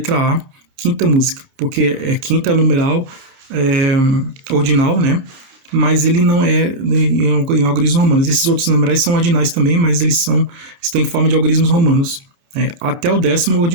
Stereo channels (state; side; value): late; left; 30 ms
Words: A, quinta música, porque quinta é numeral ordinal, né? Mas ele não é em algarismos romanos. Esses outros numerais são ordinais também, mas eles estão em forma de algarismos romanos. Até o 10º